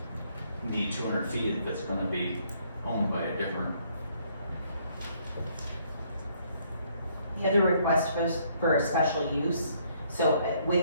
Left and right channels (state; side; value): inverted; both; correlation -0.67